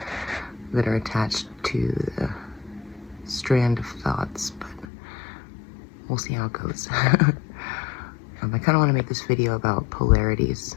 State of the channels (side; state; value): right; drops out; at 4.9 s